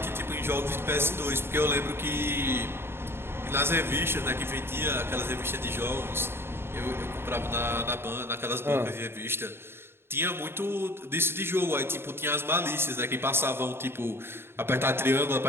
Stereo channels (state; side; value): late; left; 0.11 ms